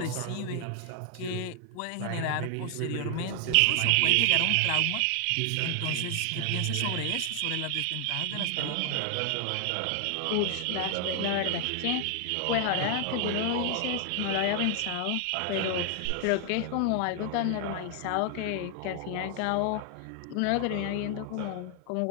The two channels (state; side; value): different; both; correlation 0.00